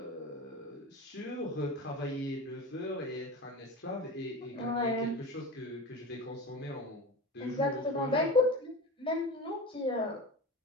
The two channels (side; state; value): both; normal; correlation 0.30